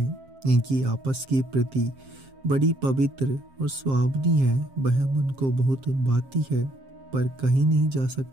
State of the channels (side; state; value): left; late; 7.5 ms